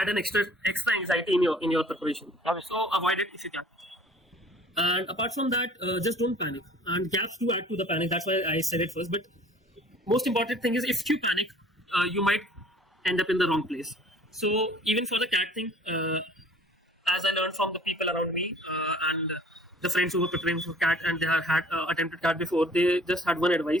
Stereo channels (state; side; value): normal; both; correlation 0.51